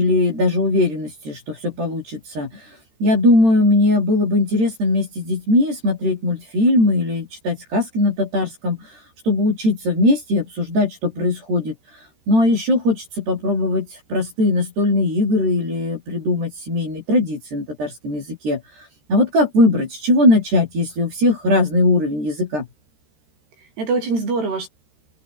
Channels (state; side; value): late; left; 13 ms